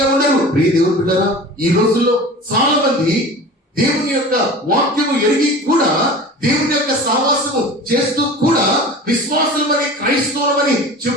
ఉండరు. ప్రియ దేవుని బిడ్డలారా, ఈ రోజుల్లో చాలా మంది దేవుని యొక్క వాక్యము ఎరిగి కూడా, దేవుని యొక్క సహవాసము చేస్తూ కూడా, విశ్వాసులమని క్రైస్తవులమని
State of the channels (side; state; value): both; normal; correlation 0.37